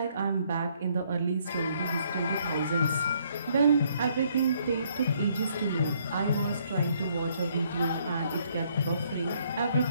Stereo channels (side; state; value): both; inverted; correlation -0.67